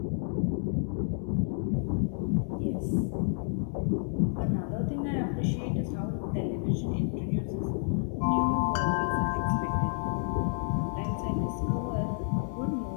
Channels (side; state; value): right; silent; 58 dB below the other